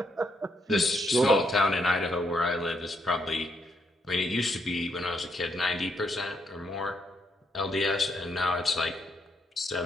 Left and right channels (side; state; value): both; normal; correlation 0.76